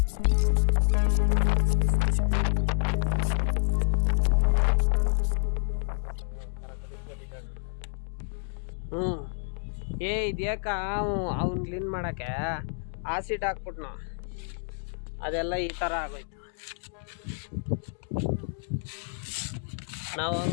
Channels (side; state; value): right; silent; digital silence